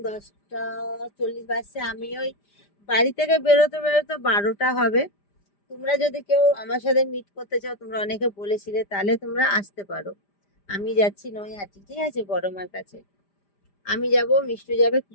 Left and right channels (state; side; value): late; right; 5.0 ms